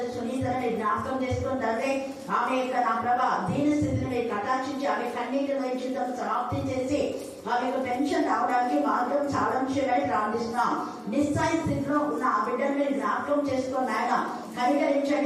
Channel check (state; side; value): identical; both; correlation 1.00